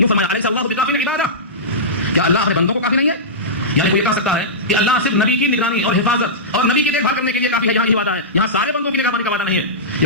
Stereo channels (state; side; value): normal; both; correlation -0.16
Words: فرمایا، الیس اللہ بکافٍ عبادہ، کیا اللہ اپنے بندوں کو کافی نہیں ہے؟ یعنی کوئی یہ کہہ سکتا ہے کہ اللہ صرف نبی کی نگرانی اور حفاظت اور نبی کی دیکھ بھال کرنے کے لیے کافی ہے، یہاں یہ وعدہ ہے، یہاں سارے بندوں کی نگرانی کا وعدہ نہیں ہے،